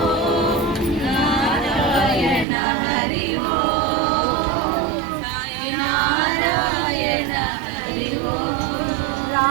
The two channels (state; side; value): drops out; left; at 2.5 s